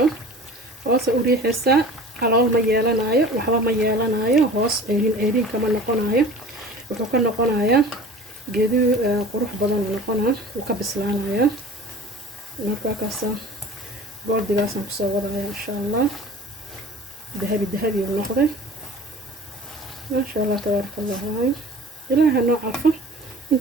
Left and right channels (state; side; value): normal; both; correlation 0.41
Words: hoosa u riixaysaa calool ma yeelanayo waxba ma yeelanayo hoos ceerin kama noqonayo wuxuu ka noqonayaa geedu qurux badan noqonaa uu ka bislaanaya marka kaasa goldigaasaan kusoo wadaya insha allah dahabi dahabi uu noqday maasha allah tabaaraka allah waayo ilaaha noo calfo